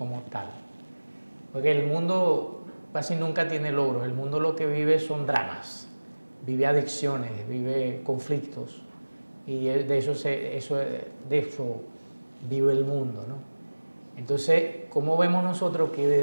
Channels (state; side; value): inverted; both; correlation -1.00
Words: tal. Porque el mundo casi nunca tiene logros, el mundo lo que vive son dramas, vive adicciones, vive conflictos, y de eso vive el mundo, ¿no? Entonces, ¿cómo vemos nosotros que